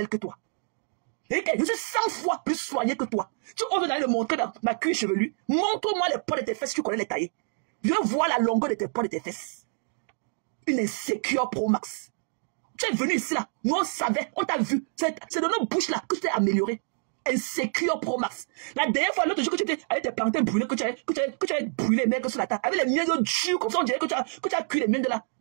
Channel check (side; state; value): left; silent; 56 dB below the other